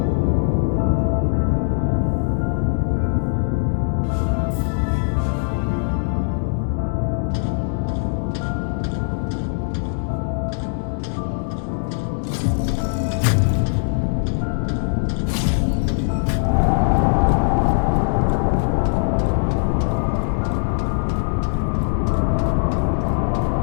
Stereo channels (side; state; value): right; silent; digital silence